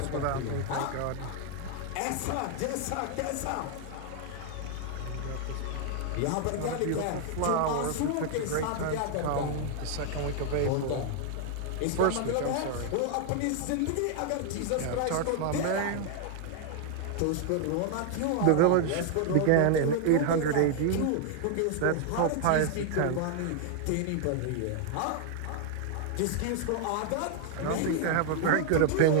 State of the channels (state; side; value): different; both; correlation 0.00